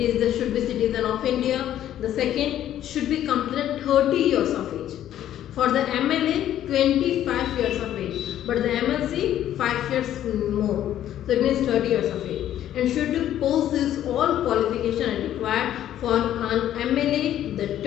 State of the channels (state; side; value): quieter; right; 11.7 dB